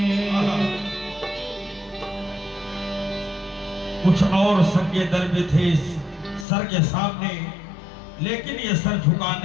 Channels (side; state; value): right; drops out; at 6.5 s